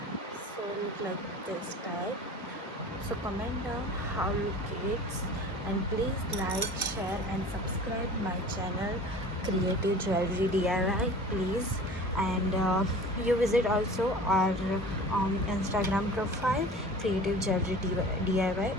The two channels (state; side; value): normal; both; correlation 0.41